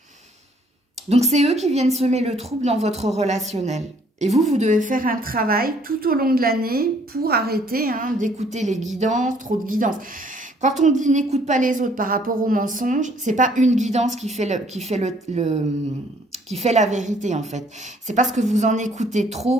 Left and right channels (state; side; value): normal; both; correlation 0.62